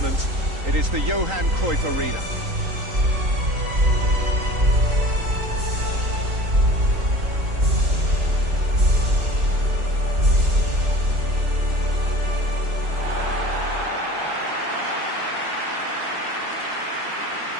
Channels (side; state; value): left; late; 3.8 ms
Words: It is the Johan Cruyff Arena.